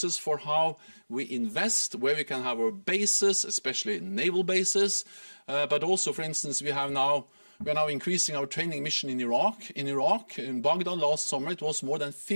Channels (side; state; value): both; inverted; correlation -1.00